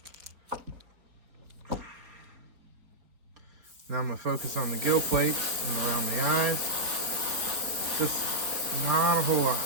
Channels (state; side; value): late; left; 4.4 ms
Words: Now I'm going to focus on the gill plates and around the eyes. Just not a whole lot,